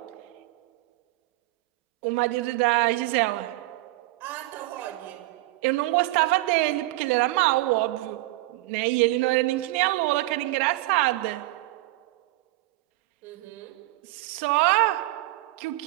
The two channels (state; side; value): quieter; left; 19.1 dB